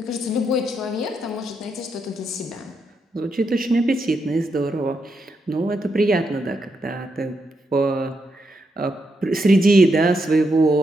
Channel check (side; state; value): both; normal; correlation 0.81